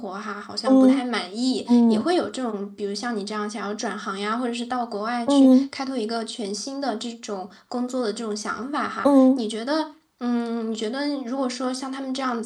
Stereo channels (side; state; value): both; identical; correlation 1.00